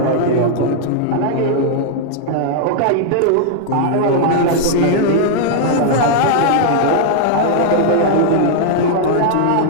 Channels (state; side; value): different; both; correlation -0.01